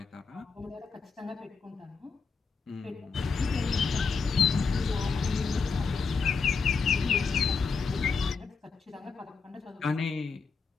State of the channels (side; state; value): right; quieter; 5.1 dB